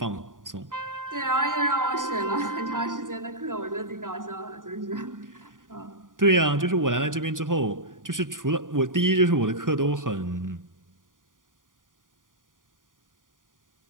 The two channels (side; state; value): left; late; 0.89 ms